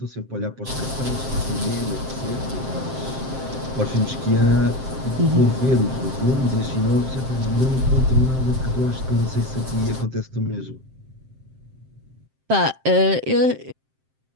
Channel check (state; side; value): late; left; 7.6 ms